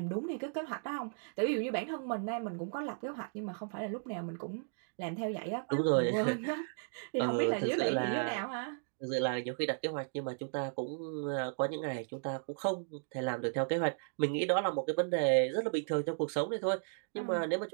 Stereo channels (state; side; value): silent; left; digital silence